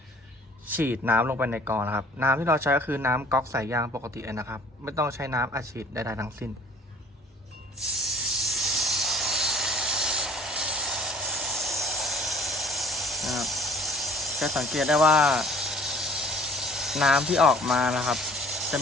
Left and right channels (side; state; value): both; normal; correlation 0.51